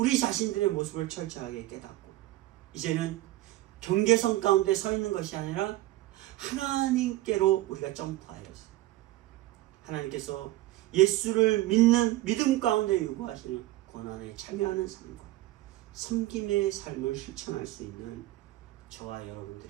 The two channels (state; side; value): quieter; left; 16.6 dB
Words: 자신들의 모습을 철저하게 깨닫고 이제는 경계선 가운데 서 있는 것이 아니라 하나님께로 우리가 점프하여서 하나님께서 예수를 믿는 믿음 가운데 요구하시는 고난에 참여하는 삶과 섬김의 삶을 실천할 수 있는 저와